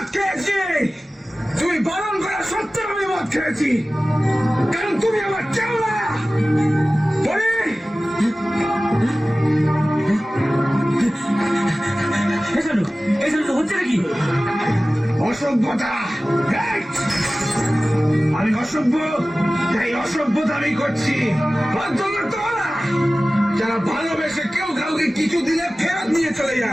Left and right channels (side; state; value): both; normal; correlation 0.97